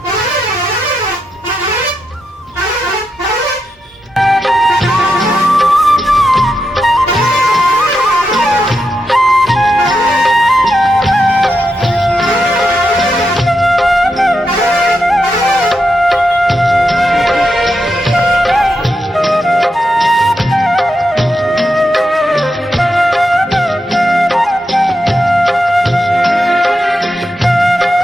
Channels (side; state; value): both; normal; correlation 0.85